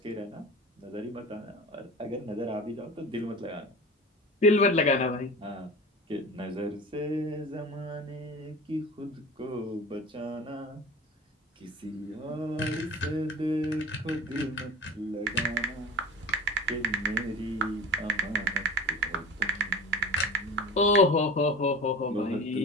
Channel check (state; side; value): normal; both; correlation 0.36